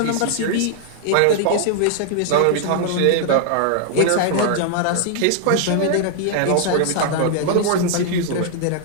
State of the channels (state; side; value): different; both; correlation 0.00